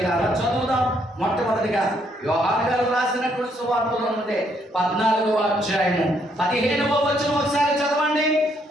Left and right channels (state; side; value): normal; both; correlation 0.71